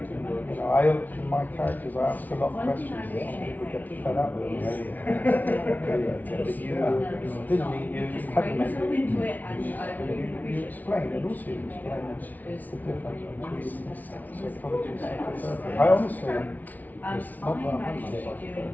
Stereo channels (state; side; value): late; right; 0.078 ms